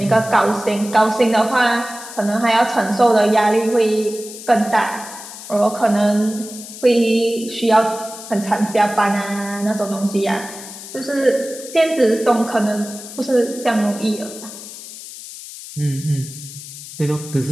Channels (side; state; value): left; noise; hiss, 13 dB below the sound